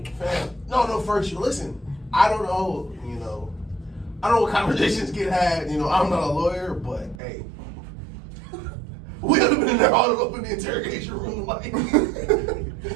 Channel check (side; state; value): left; drops out; at 7.2 s